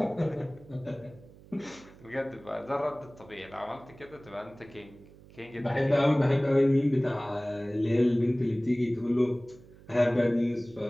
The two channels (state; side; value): noise; right; hum, 22 dB below the sound